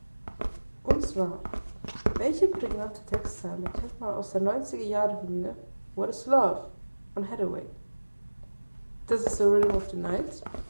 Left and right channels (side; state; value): both; inverted; correlation -1.00